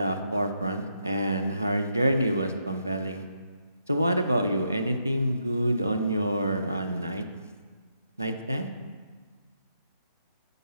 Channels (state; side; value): inverted; both; correlation -0.79